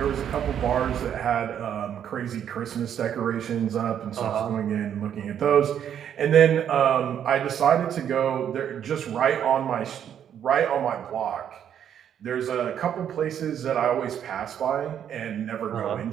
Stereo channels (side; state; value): left; quieter; 9.3 dB